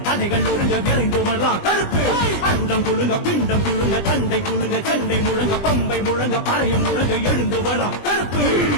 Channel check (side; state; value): right; late; 20 ms